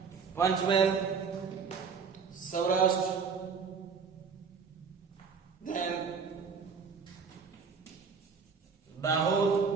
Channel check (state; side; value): quieter; left; 5.6 dB